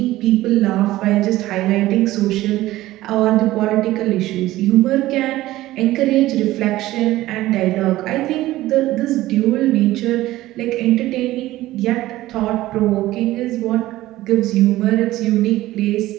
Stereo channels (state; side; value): quieter; left; 16.3 dB